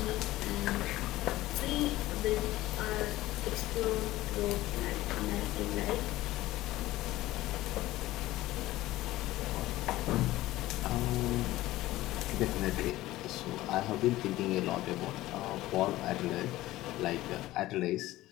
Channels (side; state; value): right; quieter; 16.7 dB